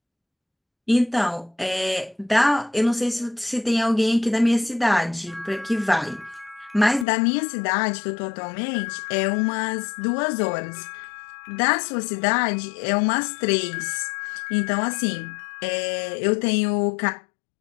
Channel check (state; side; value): drops out; right; at 7.1 s